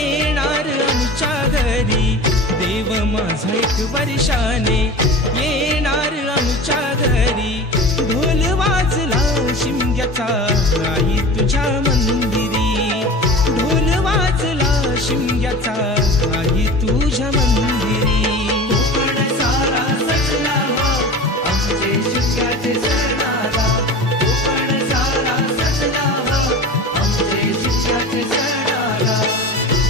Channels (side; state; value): both; normal; correlation 0.34